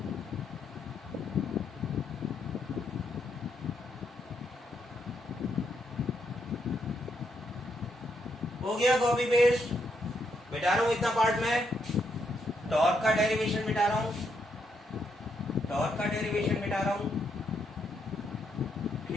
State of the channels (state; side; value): normal; both; correlation 0.77